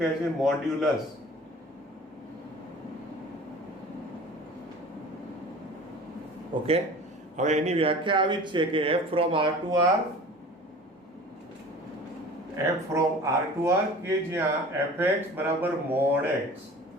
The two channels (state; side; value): normal; both; correlation 0.42